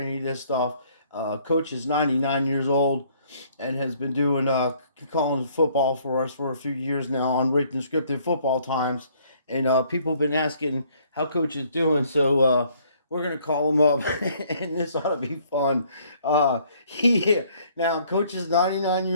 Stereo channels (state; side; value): inverted; both; correlation -0.62